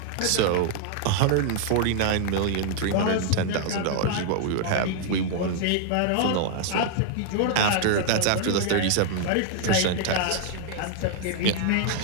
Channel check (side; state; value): both; different; correlation 0.00